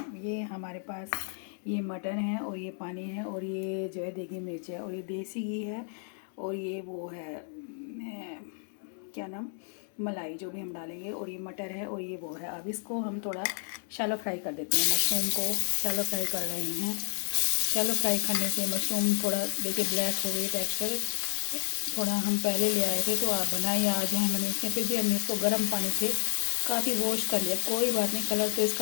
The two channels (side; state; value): right; silent; 57 dB below the other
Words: हमारे पास ये मटर है, और ये पानी है, और ये जो है देगी मिर्च है, और ये देसी घी है, और ये वो है क्या नाम, मलाई जो भी हम डालेंगे, और ये मटर है, और ये वो है। अब इसको हम थोड़ा शैलो फ्राई कर देते हैं। मशरूम को शैलो फ्राई कर रहे हैं। शैलो फ्राई करने से मशरूम थोड़ा देखिए ब्लैक हो गई टेक्सचर। थोड़ा हम पहले ले आए थे, तो आप बनाइए आज हैं मैंने इसमें, फिर भी हमने इसको गर्म पानी से काफ़ी वॉश कर लिया। कोई बात नहीं, कलर तो